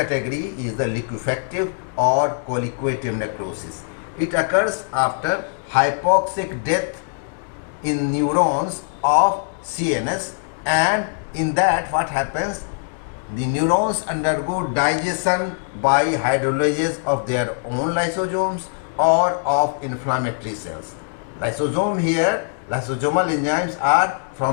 is the liquefactive or coagulative necrosis. It occurs after hypoxic death in neurons of CNS, and in that what happens? The neurons undergo digestion by hydrolysis of their own lysosomes or of inflammatory cells. Lysosome here, lysosomal enzymes are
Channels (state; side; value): silent; right; digital silence